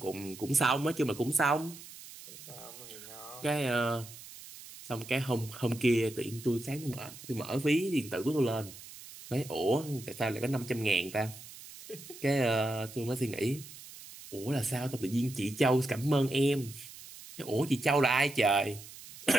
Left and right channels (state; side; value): noise; right; hiss, 16 dB below the sound